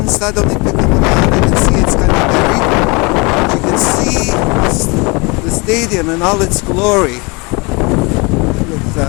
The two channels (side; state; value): right; quieter; 28.3 dB